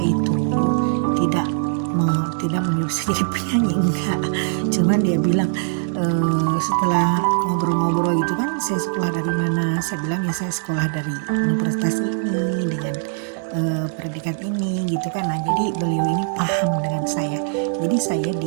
itu tidak menyuruh saya jadi penyanyi, enggak. Cuman dia bilang, setelah ngobrol-ngobrol gitu kan, saya sekolah dari mana? Saya bilang ya saya sekolah dari universitas ini dengan predikat ini gitu kan. Nah, jadi beliau ini paham dengan saya. Jadi saya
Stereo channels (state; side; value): silent; left; digital silence